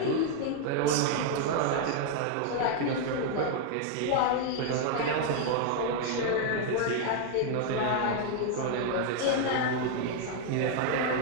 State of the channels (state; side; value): different; both; correlation 0.00